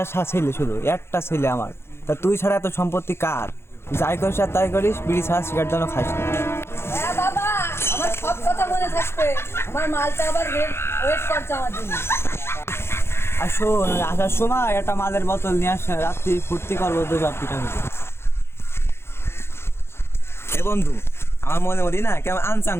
ছেলে, শুধু একটা ছেলে আমার, তা তুই ছাড়া এত সম্পত্তি কার? যাই করিস আর তাই করিস, বিড়ি ছাড়া সিগারেট যেন খাস না। হ্যাঁ বাবা, আমার সব কথা মনে থাকবে। আমার মালটা আবার ওয়েট করছে আমার জন্য। আর শোন, আসার সময় একটা মালের বোতল নিয়ে আসে, রাত্রি ফুর্তি করবো তো সব পিঠা পিঠে। এ বন্ধু, আমার মনে মনে না কেমন আনচান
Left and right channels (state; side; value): late; right; 0.12 ms